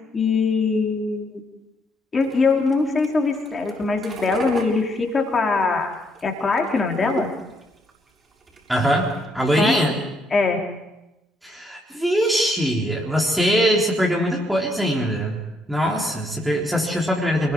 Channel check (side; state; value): both; normal; correlation 0.73